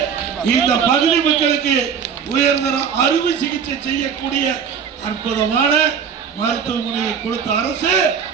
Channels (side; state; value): left; quieter; 7.1 dB